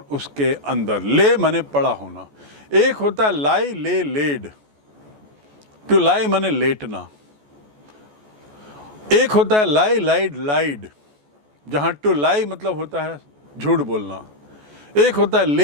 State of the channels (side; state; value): left; late; 14 ms